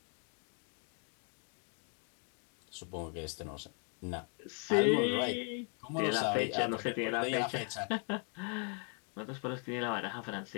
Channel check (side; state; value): right; quieter; 39.2 dB